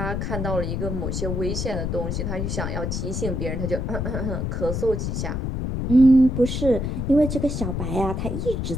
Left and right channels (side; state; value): left; noise; rumble, 2 dB below the sound